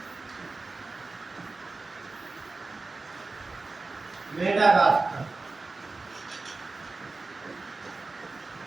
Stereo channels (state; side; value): quieter; left; 3.6 dB